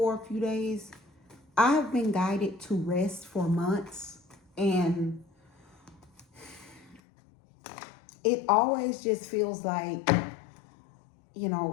a few days. I've been guided to rest for months, and it always just feels like,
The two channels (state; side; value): drops out; right; at 7.0 s